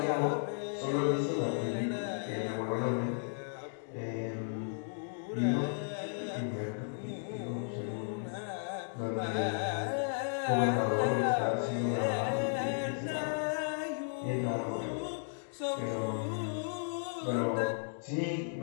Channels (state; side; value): silent; right; digital silence